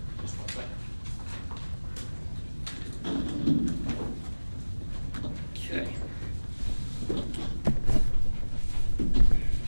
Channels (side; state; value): both; inverted; correlation -1.00